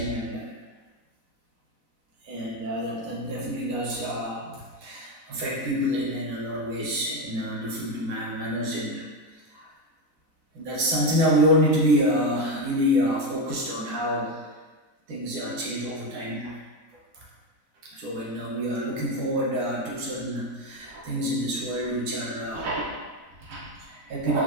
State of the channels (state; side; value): late; left; 4.0 ms